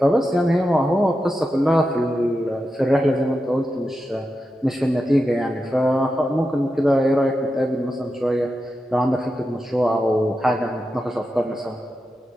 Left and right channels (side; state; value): both; normal; correlation 0.89